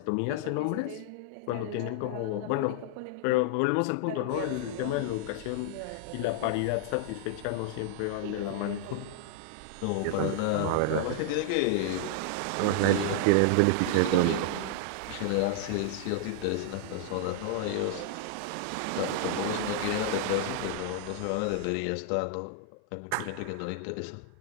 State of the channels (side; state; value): both; different; correlation -0.01